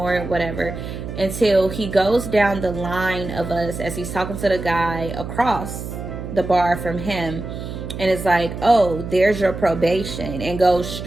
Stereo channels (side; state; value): right; noise; hum, 8 dB below the sound